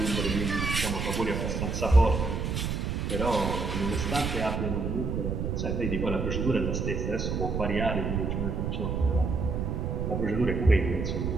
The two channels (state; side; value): noise; right; rumble, 1 dB below the sound